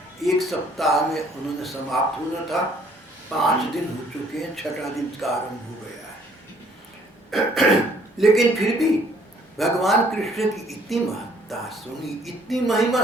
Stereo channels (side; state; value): both; normal; correlation 0.62